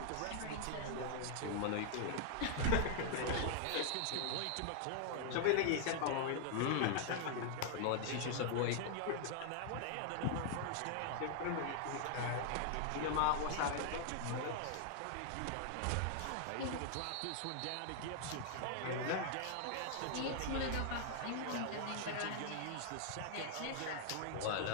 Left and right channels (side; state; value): both; different; correlation 0.00